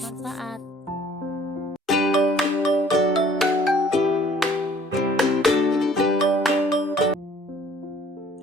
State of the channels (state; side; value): normal; both; correlation 0.56